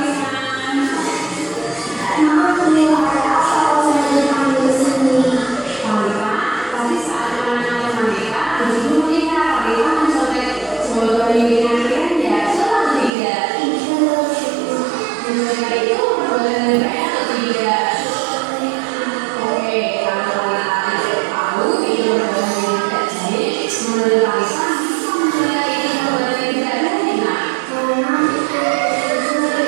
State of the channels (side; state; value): left; drops out; at 13.1 s